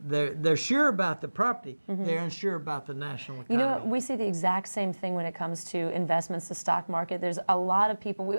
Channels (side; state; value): both; inverted; correlation -1.00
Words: They're sure about the property. They're unsure about the national economy. You know what? We see the exact same thing when it comes to investments, the stock market. There's a lot of people.